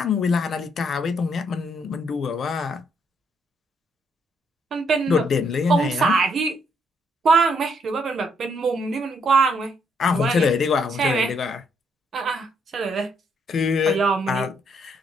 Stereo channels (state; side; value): normal; both; correlation 0.72